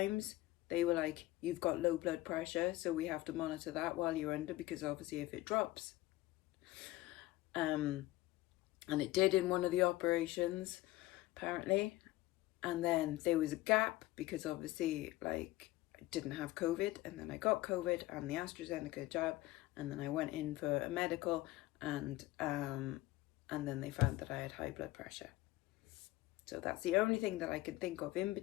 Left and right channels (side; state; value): right; quieter; 17.6 dB